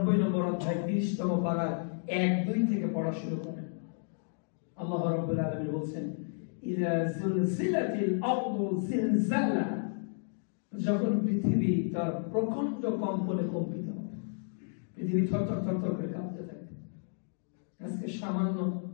নম্বর অধ্যায় 30তম পারার 1-2 থেকে পড়া শুরু করেন। আল্লাহ রাব্বুল আলামিন বলেন, ইযা যুলজিলাতিল আরদু জিলজালাহা, যখন পৃথিবী তার প্রচন্ড কম্পনে কম্পিত হবে, পৃথিবী থরথর থরথর করে কাঁপতে থাকে। আজকে সামান্য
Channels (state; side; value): silent; right; digital silence